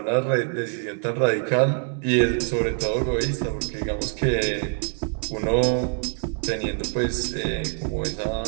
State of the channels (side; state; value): left; silent; 60 dB below the other